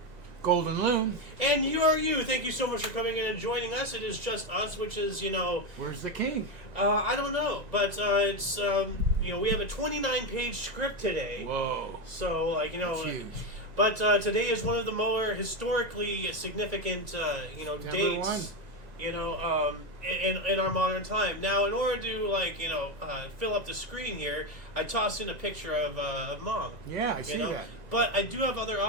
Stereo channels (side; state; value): left; late; 1.9 ms